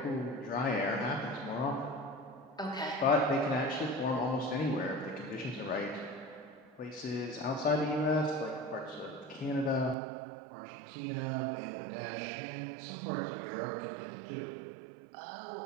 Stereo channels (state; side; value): drops out; left; at 10.0 s